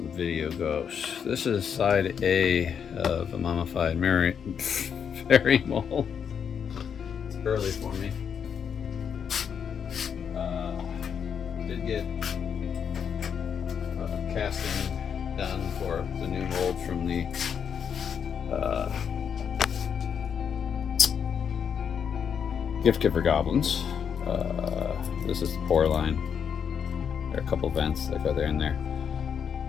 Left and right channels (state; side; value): quieter; right; 7.4 dB